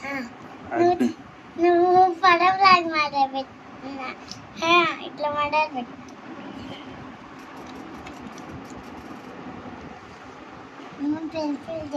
నువ్వు పడవలాగా మాట్లాడుతున్నా ఇట్లా మాట్లాడబెట్టు. నువ్వు పెన్సిల్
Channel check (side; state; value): both; identical; correlation 1.00